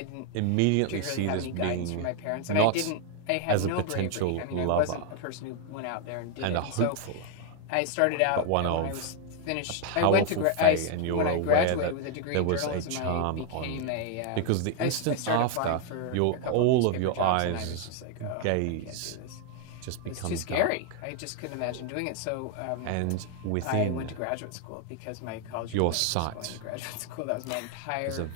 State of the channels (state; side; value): different; both; correlation 0.00